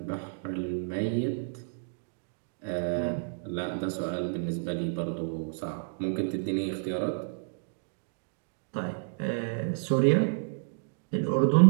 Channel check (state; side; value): silent; left; digital silence